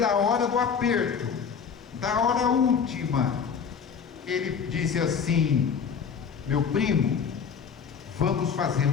hora do aperto, da hora última. Ele disse assim: meu primo, vamos fazer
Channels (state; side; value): quieter; right; 6.6 dB